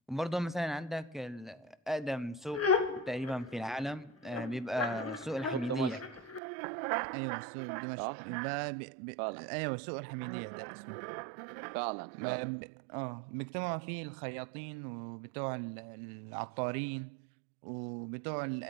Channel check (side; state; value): left; drops out; at 6.4 s